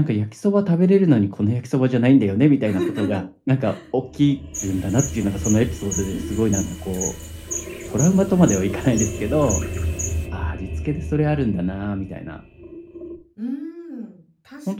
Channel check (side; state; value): both; identical; correlation 1.00